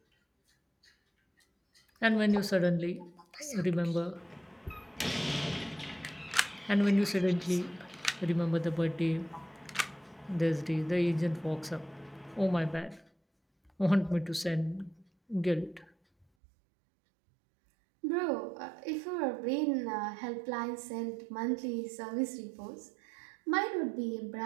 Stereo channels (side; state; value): left; drops out; at 16.2 s